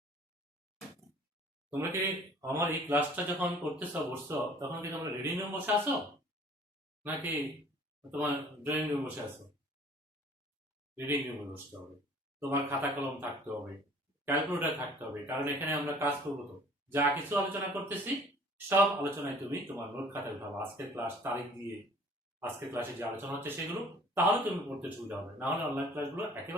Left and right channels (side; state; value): both; normal; correlation 0.52